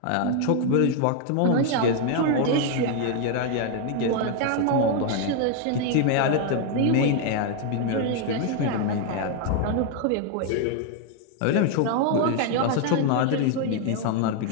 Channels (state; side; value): different; both; correlation 0.01